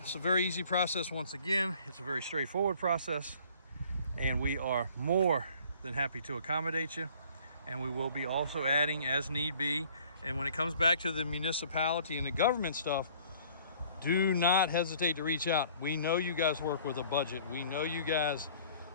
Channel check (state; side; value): inverted; both; correlation -0.54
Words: it's a very easy process. Once again, it's a very straightforward process, and we are more than happy to accommodate you. And we will be also adding as need be. And when it comes back to the municipality and the government stuff, do not hesitate to reach out. We know you guys work with a budget. We know you guys